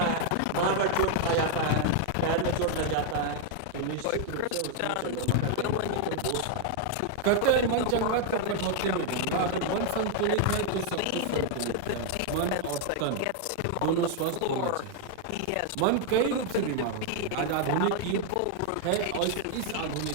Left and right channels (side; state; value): both; different; correlation 0.00